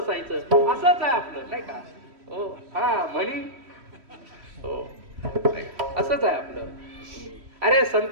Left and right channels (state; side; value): late; left; 3.1 ms